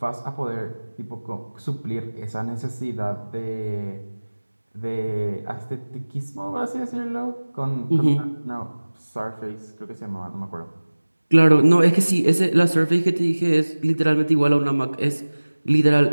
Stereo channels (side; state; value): both; inverted; correlation -1.00